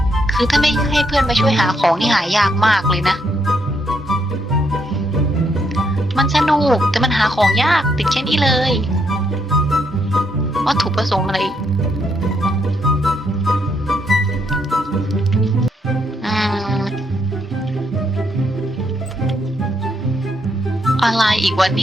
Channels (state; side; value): normal; both; correlation 0.75